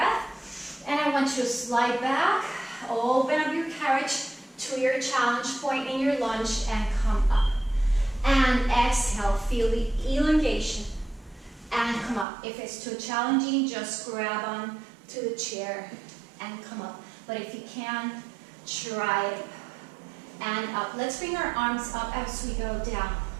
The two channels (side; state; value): left; drops out; at 12.2 s